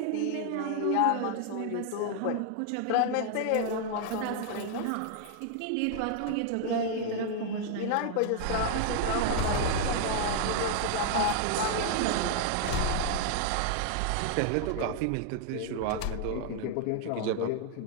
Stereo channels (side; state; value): both; different; correlation 0.00